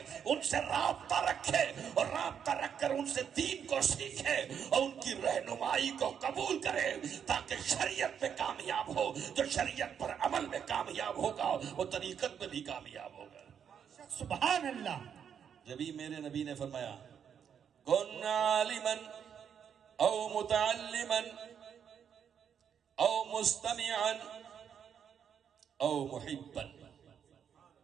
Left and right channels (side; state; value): left; quieter; 7.9 dB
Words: ان سے رابطہ رکھے، اور رابطہ رکھ کر ان سے دین کو سیکھے اور ان کی رہنمائی کو قبول کرے تاکہ شریعت میں کامیاب ہو۔ جو شریعت پر عمل میں کامیاب ہوگا وہ طریقت میں بھی کامیاب ہوگا۔ سبحان اللہ۔ جبھی میرے نبی نے فرمایا کن عالما او متعلما او مستمعا او محبا